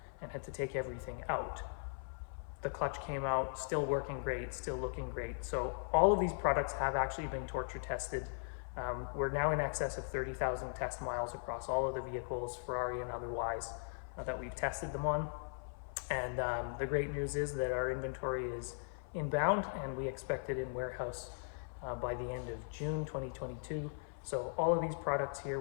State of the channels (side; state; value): right; silent; 52 dB below the other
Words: and had to take everything out. The clutch came out still working great, still looking great. So all of these products have actually been torture tested. We're now in excess of 30,000 test miles across all of the vehicles, Ferrari and otherwise, that we've tested them on. And the great news is that our inventory is inbound, and we expect it in warehouse by the end of June 2022. So all of these products here